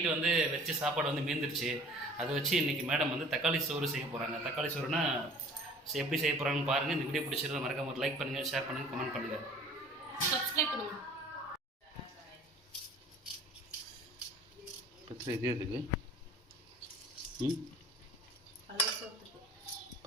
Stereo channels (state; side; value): normal; both; correlation 0.48